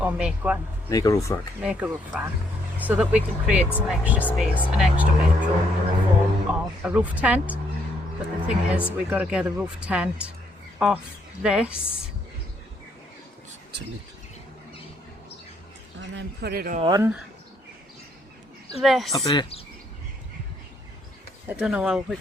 or make one. Make a roof rack. Make a roof rack, so that we can create some extra space, an extra bedroom in the form of a roof tent. But the thing is, we've got to get the roof tent off this and then put it on this. Up there. I don't know how we're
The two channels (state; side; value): normal; both; correlation 0.72